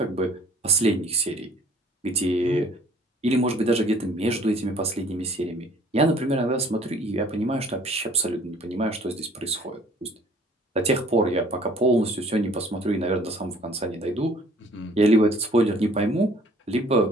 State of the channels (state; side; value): normal; both; correlation 0.55